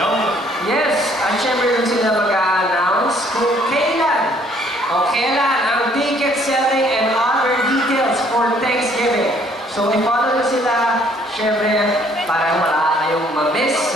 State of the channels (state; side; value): normal; both; correlation 0.62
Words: Yes, at syempre rin sila mag-a-announce kung kailan o kailan ang ticket selling and other details for Thanksgiving. So, i-follow nyo sila, syempre, para wala kayong ma-miss